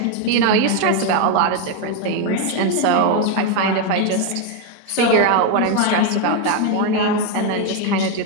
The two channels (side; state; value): both; different; correlation 0.01